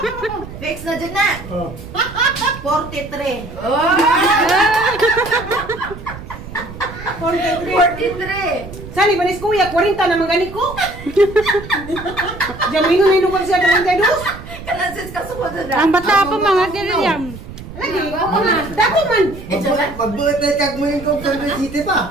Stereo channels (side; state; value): right; noise; rumble, 13 dB below the sound